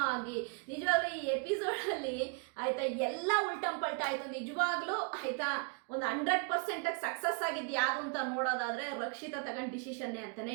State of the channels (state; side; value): quieter; left; 37.0 dB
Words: ಆಗಿ ನಿಜವಾಗ್ಲೂ ಈ ಎಪಿಸೋಡಲ್ಲಿ ಆಯಿತಾ ಎಲ್ಲ ಉಲ್ಟಂಪಲ್ಟ ಆಯಿತು. ನಿಜವಾಗ್ಲೂ ಆಯಿತಾ ಒಂದು 100% ಸಕ್ಸಸ್ ಆಗಿದ್ದು ಯಾವುದು ಅಂತ ನೋಡೋದಾದರೆ ರಕ್ಷಿತಾ ತಗೊಂಡು ಡಿಸಿಷನ್ನೇ ಅಂತಲೇ